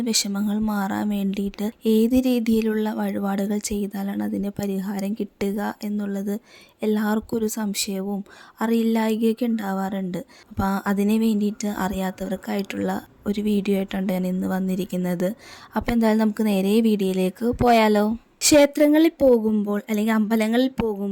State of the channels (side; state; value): both; identical; correlation 1.00